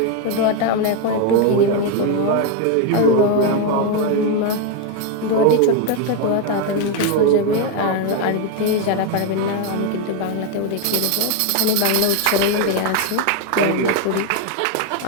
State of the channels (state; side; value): different; both; correlation 0.02